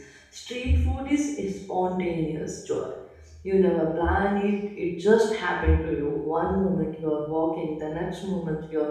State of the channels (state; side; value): identical; both; correlation 1.00